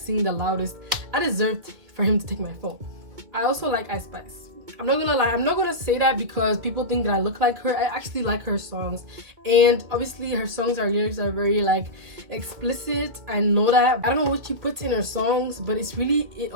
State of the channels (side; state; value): left; late; 2.4 ms